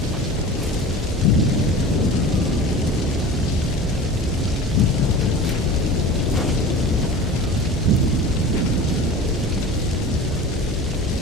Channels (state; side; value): normal; both; correlation 0.37